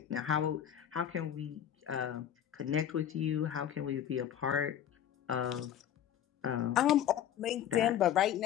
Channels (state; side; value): quieter; right; 10.1 dB